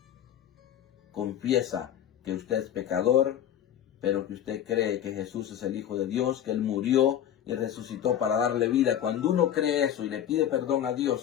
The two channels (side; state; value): right; quieter; 10.3 dB